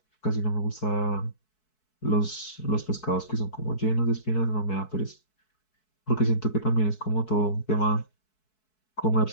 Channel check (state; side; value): late; right; 4.6 ms